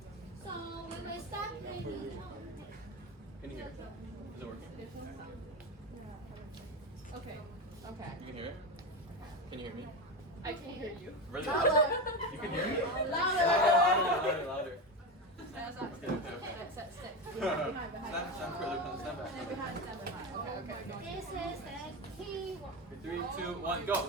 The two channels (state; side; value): normal; both; correlation 0.17